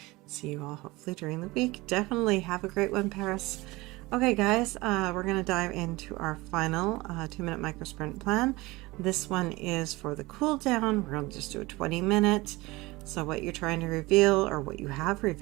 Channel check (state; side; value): quieter; left; 21.4 dB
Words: See you all hopefully during the week. Definitely have a great one, Paris. Okay guys, we're going to dive into our final 2-minute micro sprint plan. This one is for the cool down. We're going to just do a 20-minute. So what you're trying to reveal or what you have